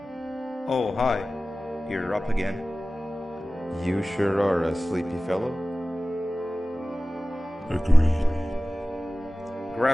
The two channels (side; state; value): both; normal; correlation 0.97